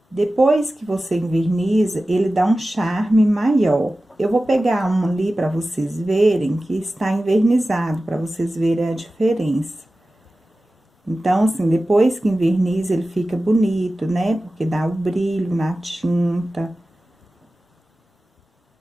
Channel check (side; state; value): both; normal; correlation 0.95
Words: Depois que você enverniza, ele dá um charme maior. Eu vou pegar um ali para vocês verem que está envernizado, para vocês verem a diferença. Então, assim, depois que enverniza, ele fica bonito, né? Porque dá o brilho na tinta.